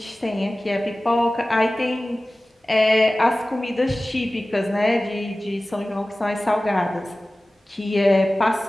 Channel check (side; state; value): both; normal; correlation 0.97